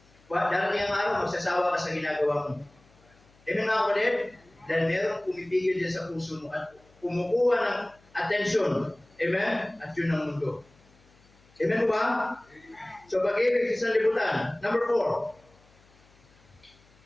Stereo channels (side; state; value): left; noise; hum, 29 dB below the sound